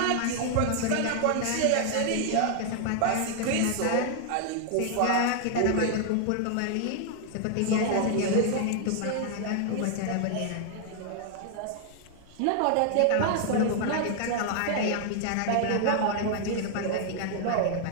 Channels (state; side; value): different; both; correlation 0.00